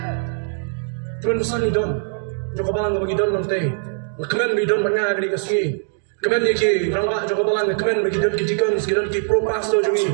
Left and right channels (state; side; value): silent; left; digital silence